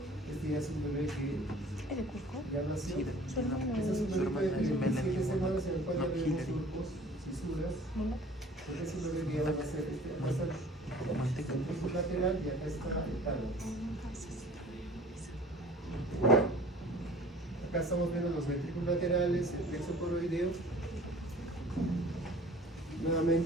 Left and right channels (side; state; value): both; normal; correlation 0.48